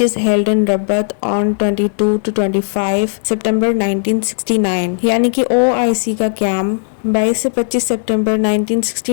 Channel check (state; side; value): silent; right; digital silence